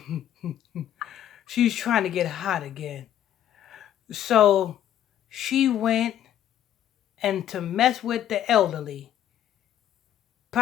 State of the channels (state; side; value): quieter; right; 11.1 dB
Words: She's trying to get hot again. So she went and to mess with the elderly,